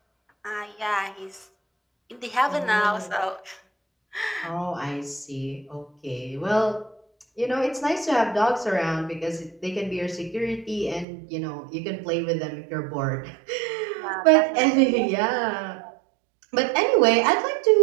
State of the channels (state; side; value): drops out; left; at 11.1 s